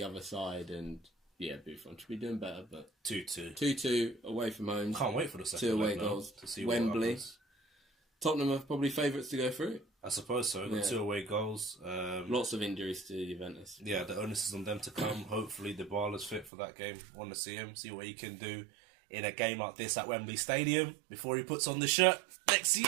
other side and... Yeah, Buffon should be doing better, but 2-2. 2-2 away from home. Can't wait for the second 2 away goals to see Wembley. Tottenham are probably favourites to go through. I suppose so. Got 2 away goals. Lots of injuries to Juventus. Yeah, the onus is on them to come. Hopefully, Dybala's fit for that game. Want to see him, see what he can do in a game like this at Wembley Stadium before he puts on the shirt next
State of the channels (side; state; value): left; drops out; at 16.5 s